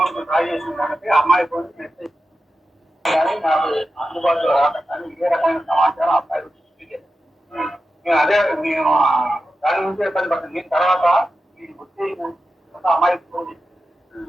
డ్రా చేసిన సంగతి అమ్మాయి ఫోన్ కి మెసేజ్ కానీ నాకు అందుబాటులో రావడం కానీ ఇదే రకమైన సమాచారం అబ్బాయి అదే నేను దాని నుంచి ఇబ్బంది పడుతుంది. దీని తర్వాత ఈ వచ్చి అమ్మాయి ఫోన్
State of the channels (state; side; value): normal; both; correlation 0.91